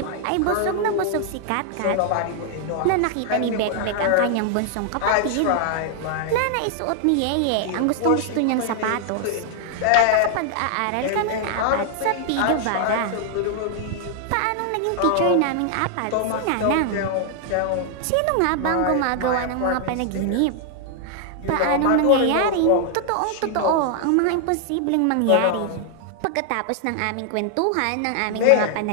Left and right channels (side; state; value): both; different; correlation 0.00